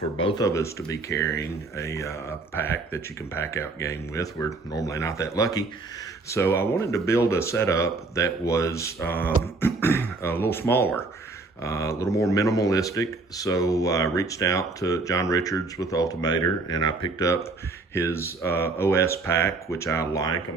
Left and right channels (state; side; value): quieter; left; 3.6 dB